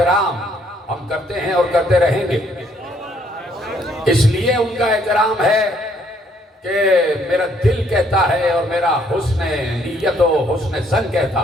ہم کرتے ہیں اور کرتے رہیں گے، اس لیے ان کا احترام ہے کہ میرا دل کہتا ہے اور میرا حسن نیت و حسن ظن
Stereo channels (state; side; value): normal; both; correlation 0.67